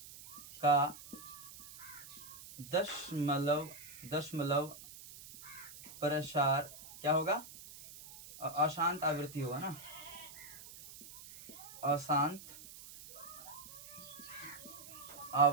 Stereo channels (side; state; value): right; noise; hiss, 15 dB below the sound